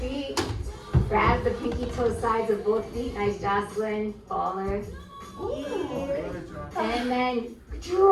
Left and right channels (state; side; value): identical; both; correlation 1.00